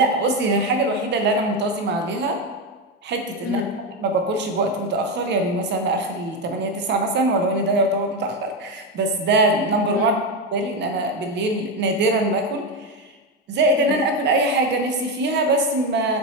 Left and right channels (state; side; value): normal; both; correlation 0.11